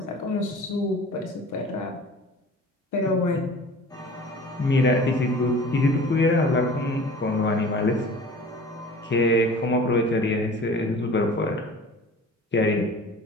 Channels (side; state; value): both; normal; correlation 0.43